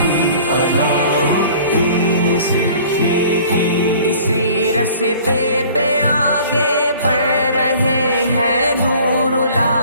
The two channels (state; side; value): inverted; both; correlation -0.50